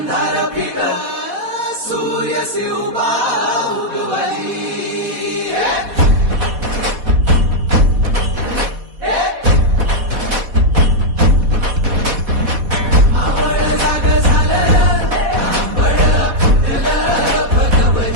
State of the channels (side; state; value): left; late; 4.1 ms